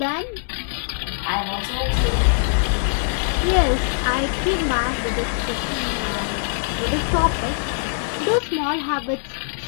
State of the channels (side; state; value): right; silent; digital silence